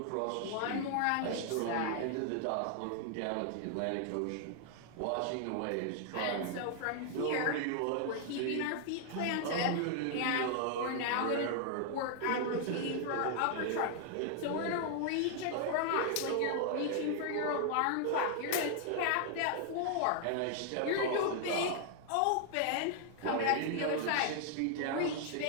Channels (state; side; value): different; both; correlation 0.00